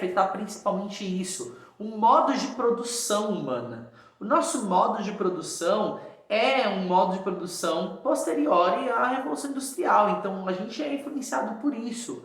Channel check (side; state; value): both; identical; correlation 1.00